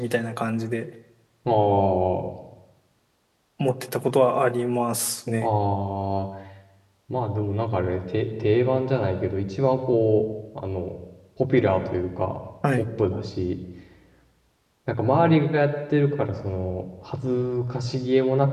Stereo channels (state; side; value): identical; both; correlation 1.00